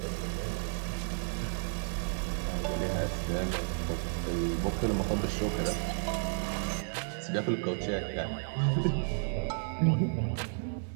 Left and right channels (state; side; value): silent; left; digital silence